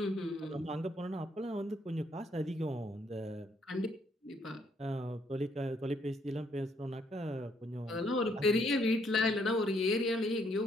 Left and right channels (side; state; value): both; normal; correlation 0.70